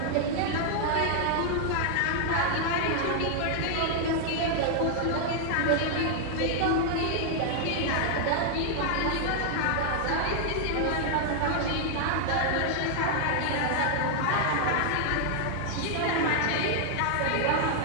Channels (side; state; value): both; different; correlation 0.00